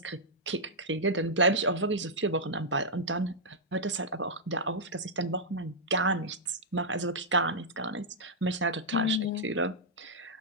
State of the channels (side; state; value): both; normal; correlation -0.08